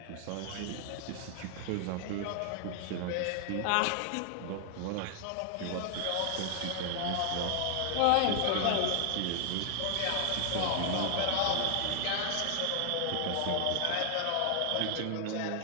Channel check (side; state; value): both; different; correlation 0.00